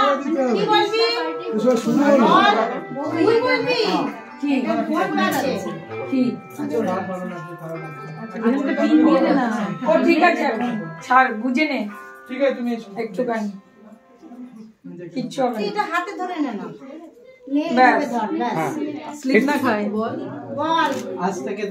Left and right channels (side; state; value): both; identical; correlation 1.00